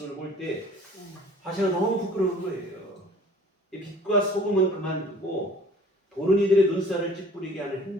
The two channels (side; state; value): both; normal; correlation 0.50